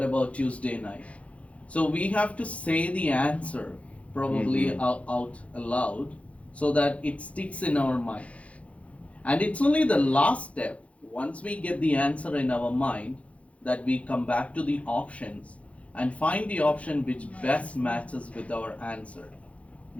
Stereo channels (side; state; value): right; late; 0.064 ms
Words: about Tuesday night? So we have to say the answer probably out aloud so that it sticks in our mind. And it's only the last step, once we get the answer in our mind, that we come back to the options and find the option which best matches with our answer,